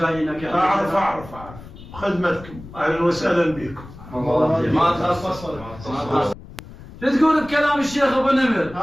يا اعرف اعرف خدمتكم اهلا وسهلا بكم. ما تخصص. شو تقول بكلام الشيخ ابو نمر؟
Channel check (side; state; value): left; noise; rumble, 17 dB below the sound